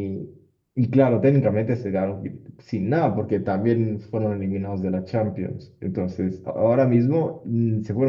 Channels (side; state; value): both; identical; correlation 1.00